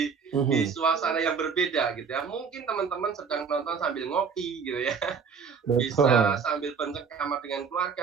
suasana yang berbeda gitu ya. Mungkin teman-teman sedang nonton sambil ngopi gitu ya. Bisa sambil bercengkrama dengan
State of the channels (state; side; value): quieter; left; 6.1 dB